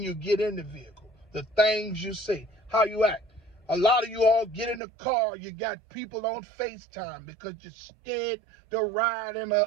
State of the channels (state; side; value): drops out; left; at 4.8 s